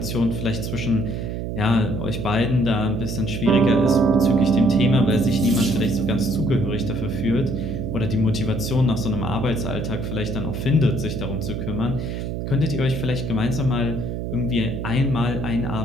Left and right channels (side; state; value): right; noise; hum, 4 dB below the sound